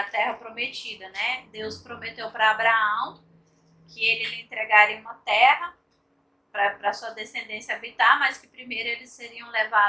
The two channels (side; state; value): both; identical; correlation 1.00